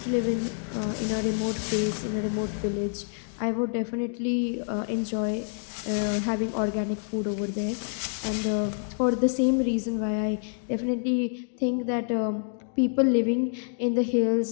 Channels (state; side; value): silent; right; digital silence